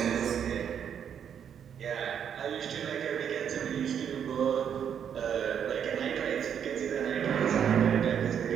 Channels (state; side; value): quieter; left; 8.3 dB